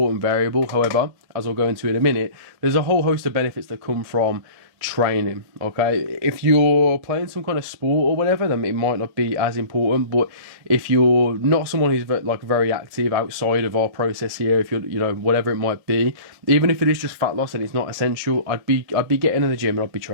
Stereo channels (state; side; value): late; left; 1.8 ms